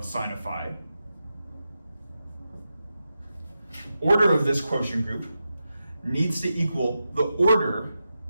sine of phi, order of this quotient group, needs to equal the order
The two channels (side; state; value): both; inverted; correlation -0.90